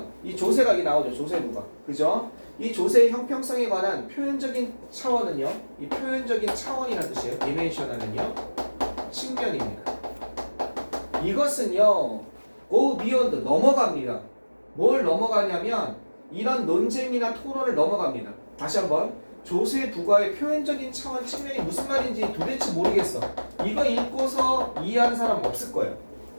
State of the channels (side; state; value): both; inverted; correlation -1.00